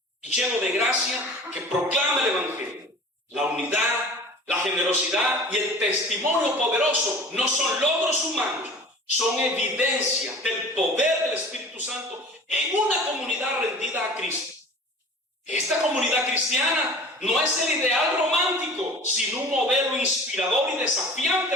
y lleno de gracia que proclama el Evangelio. La unidad, la generosidad y el testimonio poderoso no son logros humanos, son evidencia del poder del Espíritu Santo en una comunidad rendida a Cristo. Esta comunidad cristiana no es el ideal romántico, sino un modelo inspirador y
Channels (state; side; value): normal; both; correlation 0.42